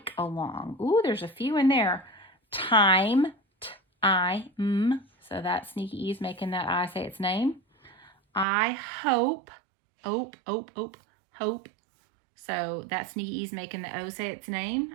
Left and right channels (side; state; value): left; drops out; at 8.5 s